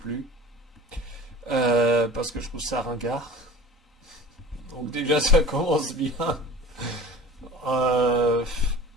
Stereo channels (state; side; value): normal; both; correlation 0.39